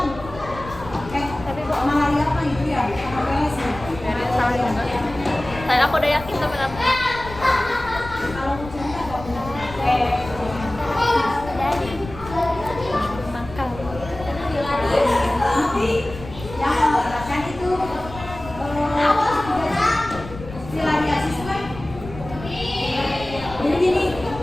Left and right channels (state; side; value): noise; left; rumble, 14 dB below the sound